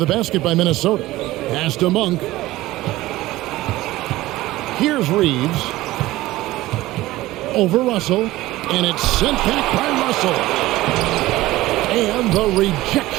basket by Minnesota. Pass to Monk. Here's Reeves. Over Russell. And it's sent back by Russell. And the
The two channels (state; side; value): quieter; left; 17.4 dB